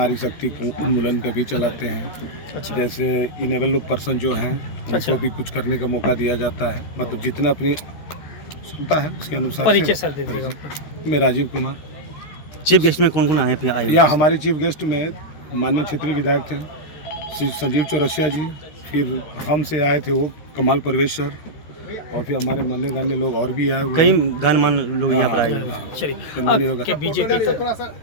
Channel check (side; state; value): right; late; 13 ms